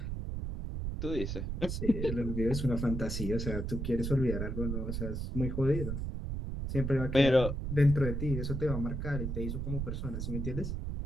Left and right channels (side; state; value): right; noise; rumble, 3 dB below the sound